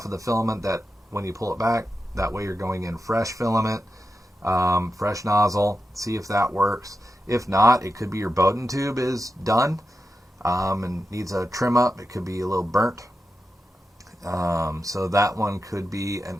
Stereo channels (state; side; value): normal; both; correlation 0.89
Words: of the filament that when you pull it back, that way you're going in fresh filament, fresh nozzle, see if that works. If not, it could be your Bowden tube is done and needs a trim up. It could be a little burnt. So that one could be an